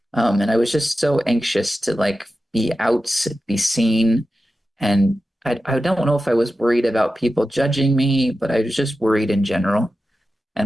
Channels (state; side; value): normal; both; correlation 0.93